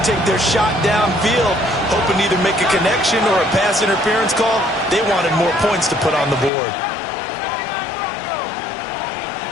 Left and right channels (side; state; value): right; drops out; at 6.5 s